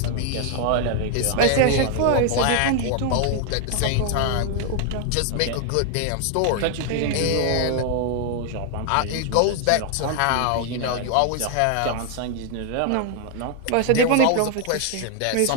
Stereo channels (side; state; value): both; different; correlation 0.00